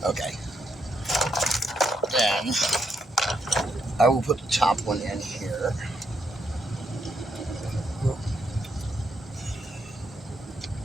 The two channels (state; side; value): normal; both; correlation 0.78